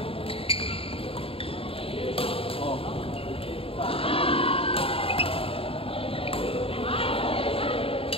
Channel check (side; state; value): right; late; 0.27 ms